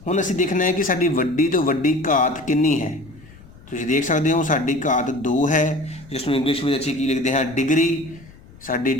हुण असीं देखना है कि साडी वड्डी तो वड्डी घात कितनी है। तुसीं देख सकते हो साडी घात 2 है, जिसनूं इंग्लिश में असीं की लिखते हैं डिग्री। साडी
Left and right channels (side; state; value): left; noise; rumble, 22 dB below the sound